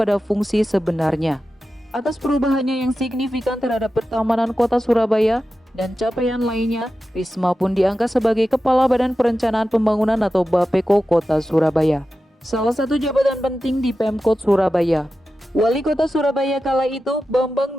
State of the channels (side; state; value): both; normal; correlation 0.92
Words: fungsi sebenarnya. Atas perubahannya yang signifikan terhadap pertamanan kota Surabaya dan capaian lainnya, Risma pun diangkat sebagai Kepala Badan Perencanaan Pembangunan atau Bapeko Kota Surabaya. Salah satu jabatan penting di Pemkot Surabaya. Wali Kota Surabaya kala itu,